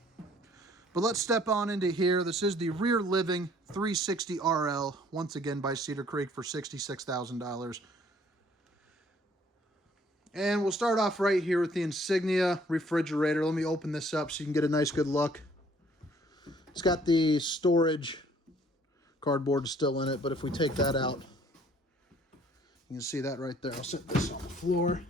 But let's step on into here. This is the rear living 360 RL, once again by Cedar Creek for $66,000. And we'll start off right here with the Insignia refrigerator. Let me open this up so you can get a nice good look. It's got the storage cardboard still in it, but if we take that out, you can see that right there. I'll set this on the floor.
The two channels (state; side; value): normal; both; correlation 0.59